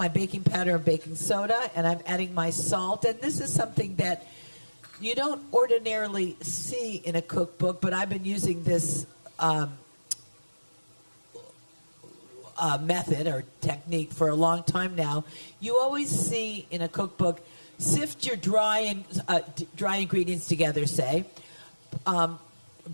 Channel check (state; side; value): inverted; both; correlation -1.00